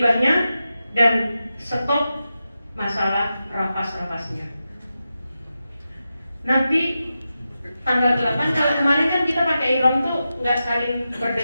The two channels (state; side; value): inverted; both; correlation -0.91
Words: dan stop masalah rapas-rapasnya. Nanti tanggal 8, kalau kemarin kan kita pakai ihram tuh nggak saling